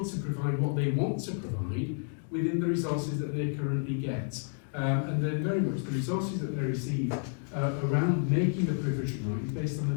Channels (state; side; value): silent; right; 57 dB below the other